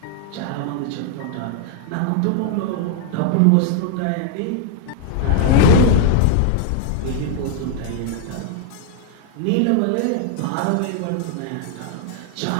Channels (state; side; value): different; both; correlation 0.00